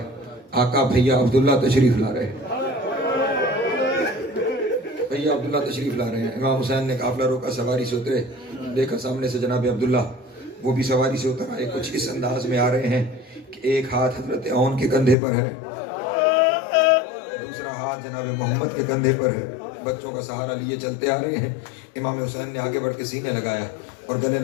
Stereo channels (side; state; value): right; drops out; at 15.2 s